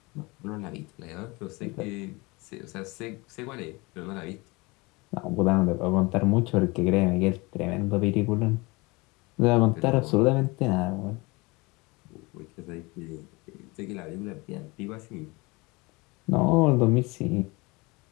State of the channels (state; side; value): quieter; right; 25.2 dB